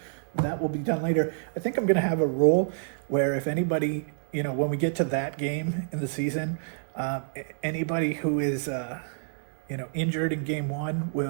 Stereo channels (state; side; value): silent; left; 59 dB below the other